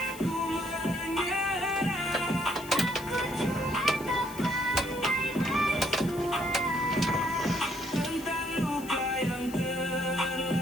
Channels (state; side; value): noise; left; hiss, 17 dB below the sound